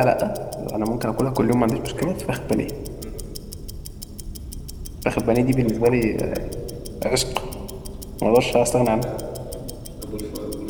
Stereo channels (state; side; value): identical; both; correlation 1.00